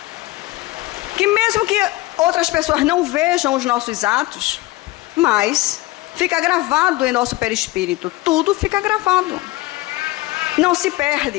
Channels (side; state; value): right; quieter; 19.6 dB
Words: Que mesmo que outras pessoas não vejam os nossos atos, mas fica gravado em nosso perispírito. Tudo fica gravado. Não se